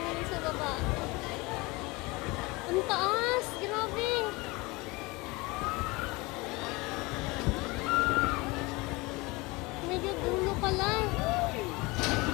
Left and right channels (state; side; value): quieter; right; 24.2 dB